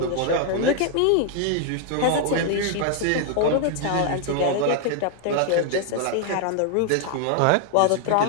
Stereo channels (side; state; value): both; different; correlation 0.00